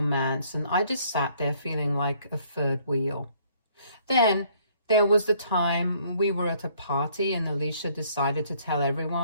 and I just sat there feeling like a third wheel. Then there was the time we were at a party and Alicia decided to tell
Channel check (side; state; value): both; inverted; correlation -0.63